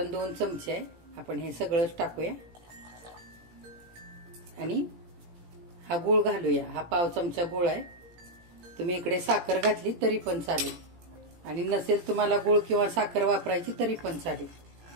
2 चमचे आहे. आपण हे सगळंच टाकूया आणि हा गूळ घालूया. हा पाव चमचा गूळ आहे. तुम्ही इकडे साखर घातली तरी पण चालेल आणि नसेल तुम्हाला गूळ किंवा साखर वापरायची तरी पण चालेल.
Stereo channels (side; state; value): left; late; 17 ms